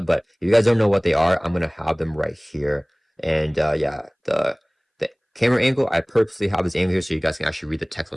But if you guys don't know what they are, I'm going to have them right here. And yeah, the camera angle, I purposely have this angle here so you guys can actually read the text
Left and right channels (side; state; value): both; identical; correlation 1.00